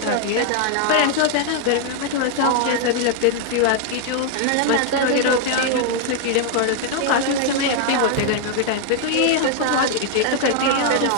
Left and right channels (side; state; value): both; different; correlation 0.00